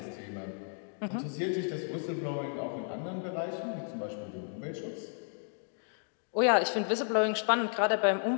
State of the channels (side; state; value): right; silent; 56 dB below the other